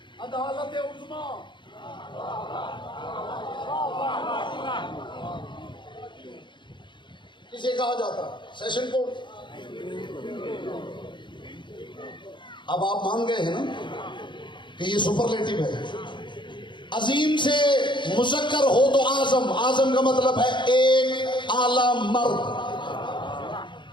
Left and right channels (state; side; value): late; right; 0.23 ms